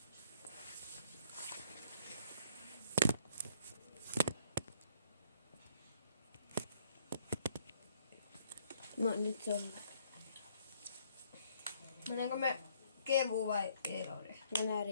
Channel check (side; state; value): both; inverted; correlation -0.63